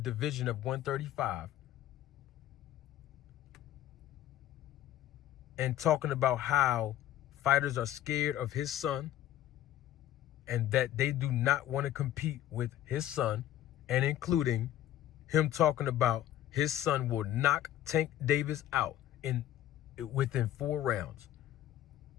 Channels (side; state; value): right; quieter; 12.3 dB